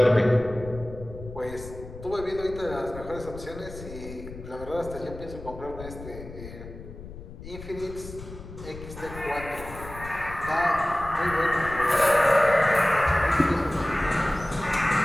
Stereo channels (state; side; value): noise; left; rumble, 13 dB below the sound